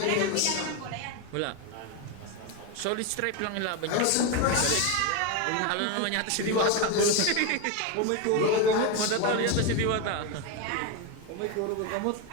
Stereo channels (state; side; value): different; both; correlation 0.02